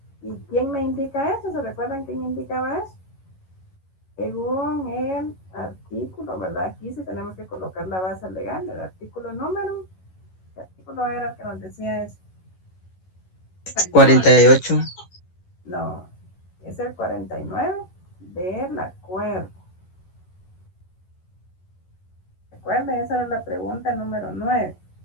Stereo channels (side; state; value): right; late; 11 ms